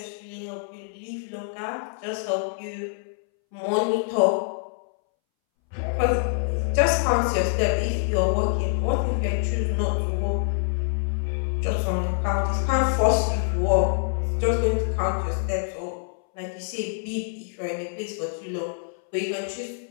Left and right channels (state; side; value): silent; right; 61 dB below the other